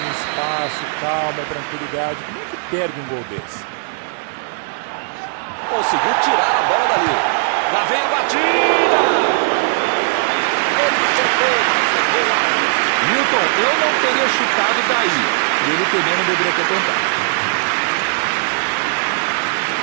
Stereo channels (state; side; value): silent; left; digital silence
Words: espaço, calma, tranquilidade. Como é que perde um gol desse? Conseguiu tirar a bola dali. Lá vem a batida! Ele tentou, mas errou alto. Milton, eu não teria chutado daí. E ele também não deveria ter tentado.